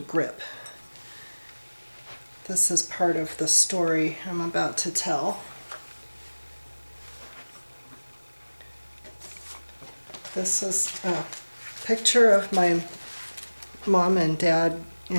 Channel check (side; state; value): both; inverted; correlation -1.00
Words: grip. This is part of the story I'm about to tell. This is a picture of my mom and dad